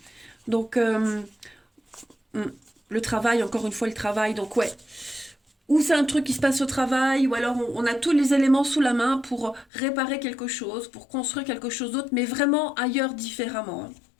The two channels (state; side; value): drops out; right; at 9.7 s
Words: Donc, le travail, encore une fois, le travail. Donc, ouais. Ou c'est un truc qui se passe au travail, ou alors on a tous les éléments sous la main pour réparer quelque chose, pour construire quelque chose d'autre, mais vraiment ailleurs, différemment.